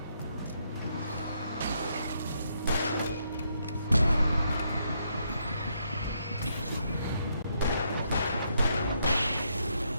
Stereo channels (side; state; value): both; inverted; correlation -0.76